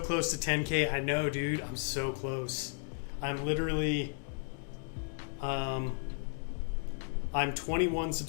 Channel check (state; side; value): silent; right; 55 dB below the other